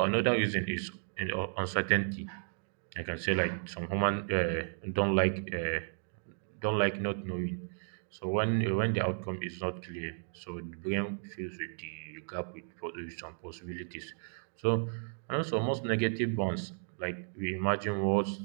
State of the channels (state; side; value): silent; left; digital silence